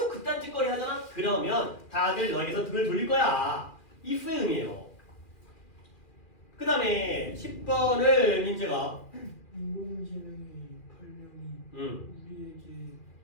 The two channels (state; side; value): late; right; 2.4 ms